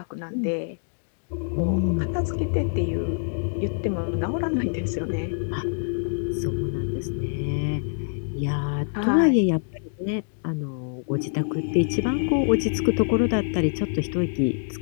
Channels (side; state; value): right; silent; digital silence